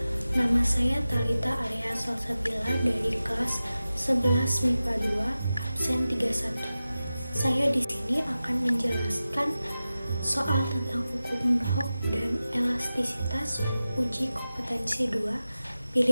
Nama saya Talita Arya Salsabila dari kelas 11 MIPA 2, absen 31. Saya di sini akan menjelaskan soal tentang hukum Hooke dan elastisitas uji kompetensi 2,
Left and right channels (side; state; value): both; inverted; correlation -0.95